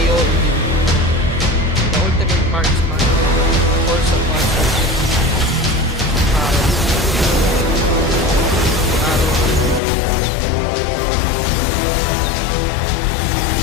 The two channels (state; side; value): drops out; right; at 9.8 s